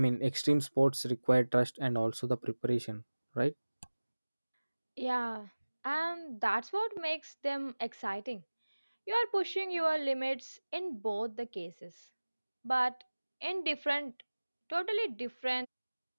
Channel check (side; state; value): both; inverted; correlation -1.00